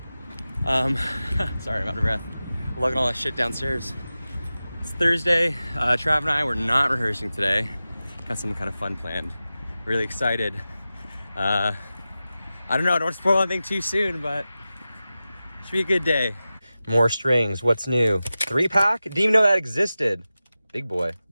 Sorry, I'm out of breath. Lugging all that shit downstairs. It's Thursday. Trav and I were not rehearsing today. Got some kind of fun planned. Really excited. I don't know, don't spoil anything too soon, but it should be a good day. More strings, what's new? 3-pack? Didn't even know that existed. Big boy,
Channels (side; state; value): both; inverted; correlation -0.95